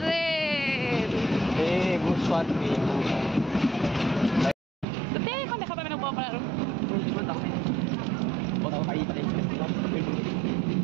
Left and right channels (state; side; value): drops out; left; at 4.9 s